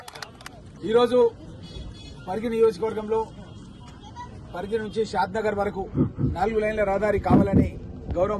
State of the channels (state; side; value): identical; both; correlation 1.00